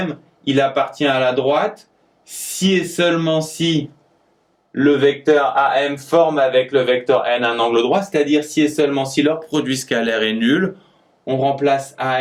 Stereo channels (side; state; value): both; identical; correlation 1.00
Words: il appartient à la droite, si et seulement si le vecteur AM forme avec le vecteur N un angle droit, c'est-à-dire si et seulement si leur produit scalaire est nul, on remplace